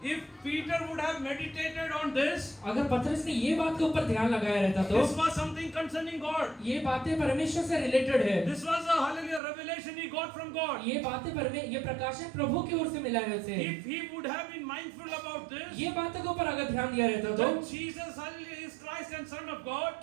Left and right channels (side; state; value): left; drops out; at 9.4 s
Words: If Peter would have meditated on this, अगर पतरस ने ये बात के ऊपर ध्यान लगाया रहता तो this was something concerning God. ये बातें परमेश्वर से रिलेटेड है। This was a hallelujah revelation he got from God. ये बातें ये प्रकाशन प्रभु की ओर से मिला है उसे। If he would have been mindful about this, ये बातों के ऊपर अगर ध्यान दिया रहता तो then Jesus hallelujah is Christ and Son of God.